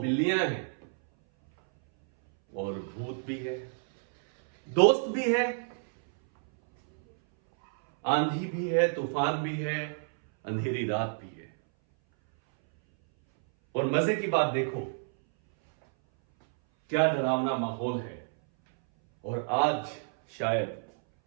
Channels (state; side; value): silent; left; 59 dB below the other